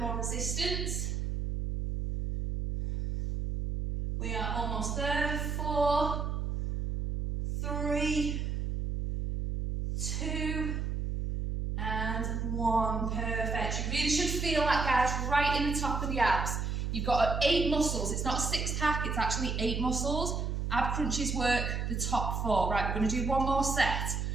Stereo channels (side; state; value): right; noise; hum, 1 dB below the sound